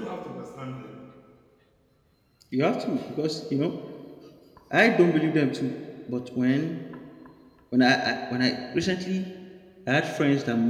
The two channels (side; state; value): both; identical; correlation 1.00